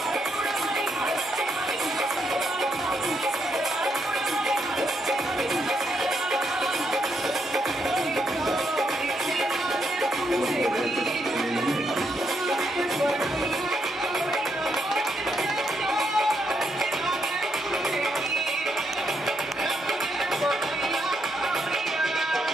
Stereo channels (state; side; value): normal; both; correlation 0.78